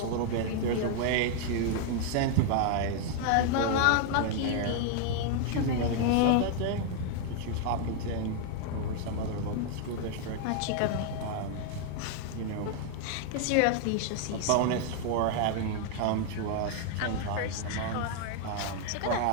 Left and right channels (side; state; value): both; different; correlation 0.00